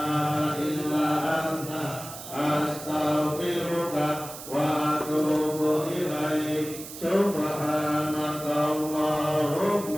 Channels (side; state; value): right; noise; hiss, 12 dB below the sound